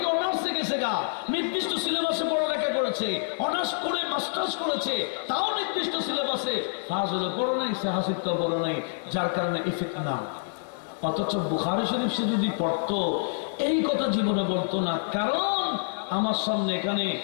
অনার্সে গেছে গা, নির্দিষ্ট সিলেবাসে পড়ালেখা করেছে, অনার্স করে মাস্টার্স করেছে, তাও নির্দিষ্ট সিলেবাসে পাস হলো, পড়ো নাই, সে হাসিবটা পড়ো নাই, যার কারণে ইফেক্ট না। অথচ বুখারী শরীফ সে যদি পড়তো, এই কথা জীবনে বলতো না। কারণ আমার সামনে এখানে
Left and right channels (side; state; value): right; silent; 60 dB below the other